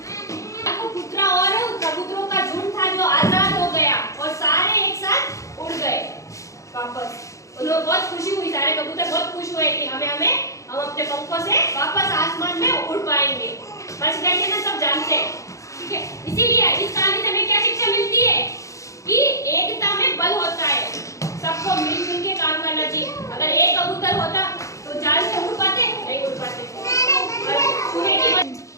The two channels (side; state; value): right; late; 0.15 ms